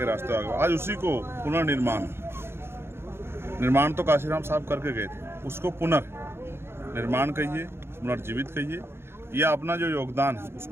रास्ते आगे। आज उसी को पुनर्निर्माण तो काशीराम साहब करके गए थे, उसको पुनर्निर्माण कहिए, पुनर्जीवित कहिए, या अपना जो योगदान है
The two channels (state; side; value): late; left; 0.12 ms